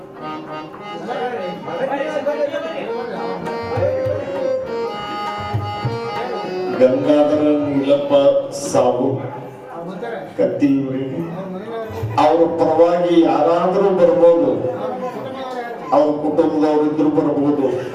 ಗಂಗಾಧರ ನೀಲಪ್ಪ ಸಾಹು ಕತ್ತಿಯವರಿಗೆ ಅವರ ಪರವಾಗಿ ಯಾರಾದರೂ ಬರ್ಬೋದು, ಅವ್ರ ಕುಟುಂಬದವರಿದ್ರು ಬರ್ಬೋದು,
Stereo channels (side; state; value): both; identical; correlation 1.00